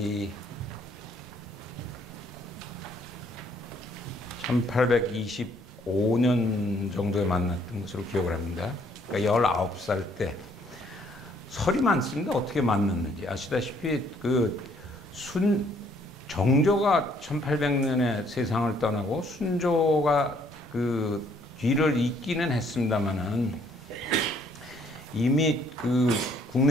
1825년 정도에 만났던 것으로 기억을 합니다. 그러니까 19살 때 설이 많습니다. 어떻게 만났는지 아시다시피 정조가 1800년에 세상을 떠나고 순조가 뒤를 잇기는 했습니다만은 이미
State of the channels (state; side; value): normal; both; correlation 0.65